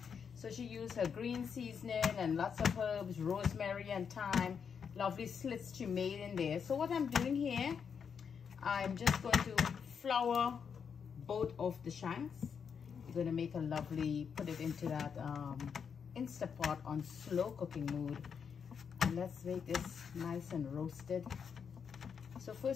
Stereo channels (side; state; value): right; quieter; 6.7 dB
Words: so she used her green seasoning and lots of herbs, rosemary and thyme. Lovely slits she made in there. So what I'm doing here, I'm just going to flour both of the shanks. You're going to make a lovely, put it into that Instapot on slow cooking mode, and let's make this nice and roasted. So